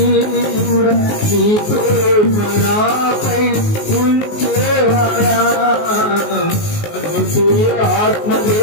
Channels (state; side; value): late; right; 19 ms